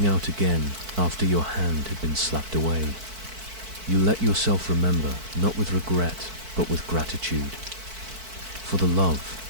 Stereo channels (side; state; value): left; late; 4.5 ms